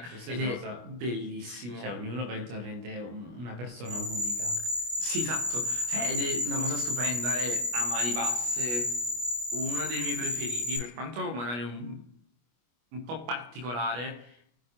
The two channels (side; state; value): left; late; 25 ms